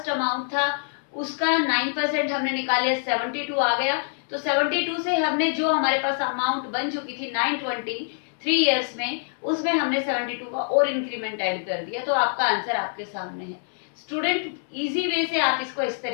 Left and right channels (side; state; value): right; silent; digital silence